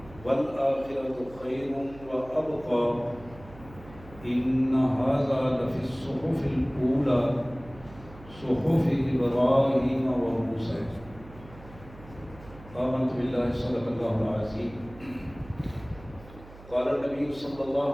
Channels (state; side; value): noise; right; hum, 19 dB below the sound